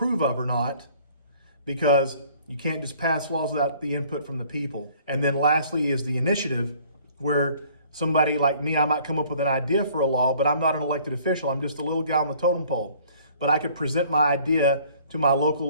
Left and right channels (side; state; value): both; inverted; correlation -0.56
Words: of or not, because you can't just pass laws without the input from the people. And then lastly is the initiative, where somebody like me, I might come up with an idea for a law, but I'm not an elected official. I'm just a little guy on the totem pole. But I could present my idea to my